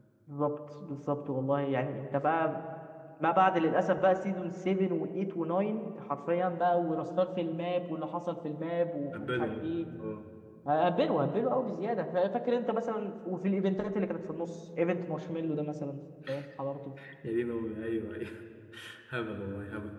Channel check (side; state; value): both; identical; correlation 1.00